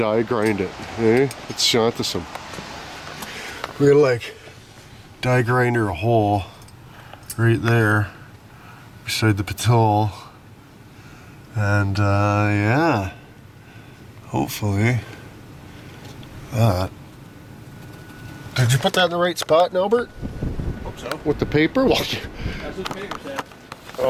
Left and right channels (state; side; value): identical; both; correlation 1.00